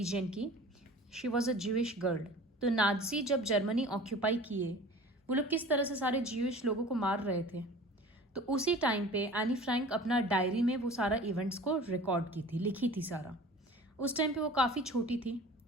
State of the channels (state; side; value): normal; both; correlation 0.42